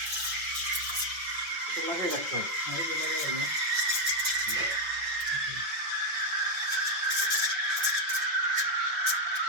এটা লাগিয়ে রাখতে হবে।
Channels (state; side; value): late; left; 5.8 ms